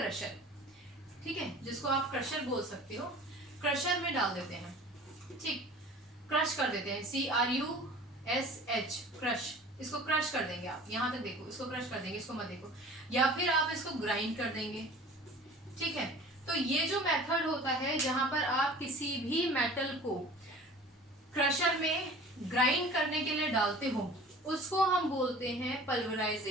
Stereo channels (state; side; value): normal; both; correlation 0.44